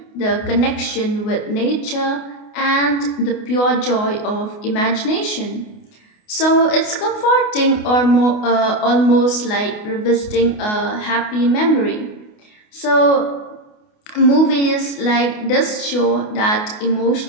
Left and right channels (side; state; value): right; late; 28 ms